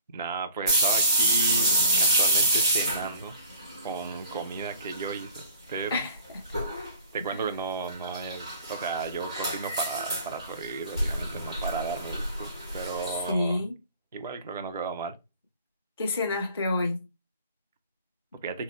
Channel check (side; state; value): both; inverted; correlation -0.49